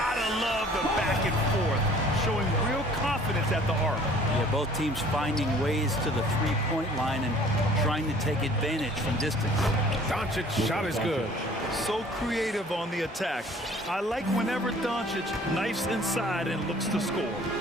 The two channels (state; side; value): normal; both; correlation 0.53